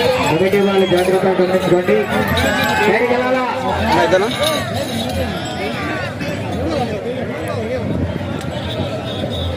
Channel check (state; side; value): identical; both; correlation 1.00